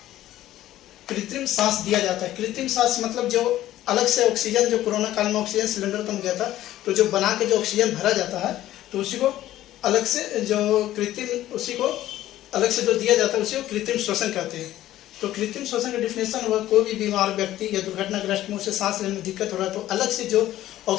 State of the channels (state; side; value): quieter; right; 13.9 dB